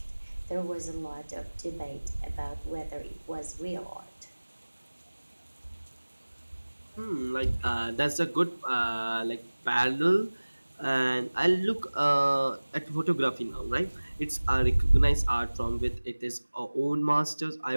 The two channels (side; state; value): both; inverted; correlation -1.00